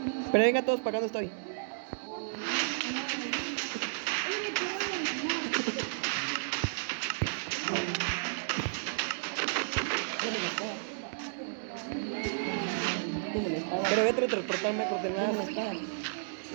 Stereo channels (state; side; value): silent; left; digital silence